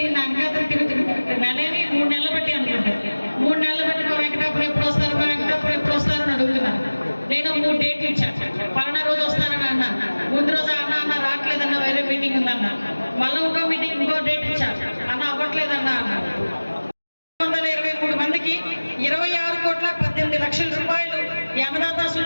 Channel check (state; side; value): inverted; both; correlation -1.00